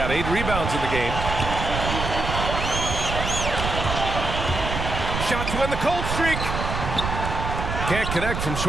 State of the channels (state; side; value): noise; right; rumble, 3 dB below the sound